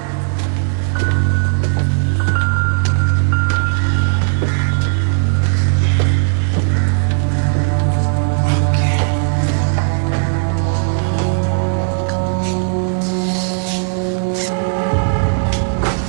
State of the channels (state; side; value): silent; left; digital silence